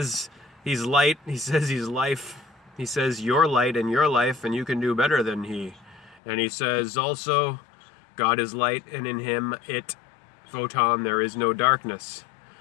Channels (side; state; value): right; drops out; at 6.2 s